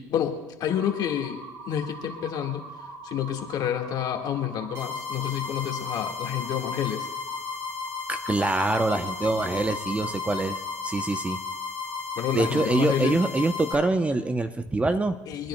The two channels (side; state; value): both; normal; correlation 0.65